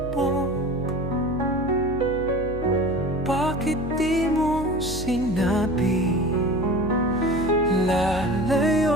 Bakit di mo sinabi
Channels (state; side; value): noise; left; hum, 8 dB below the sound